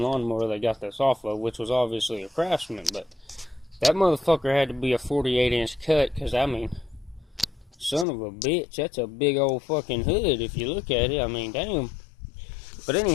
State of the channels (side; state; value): right; drops out; at 8.1 s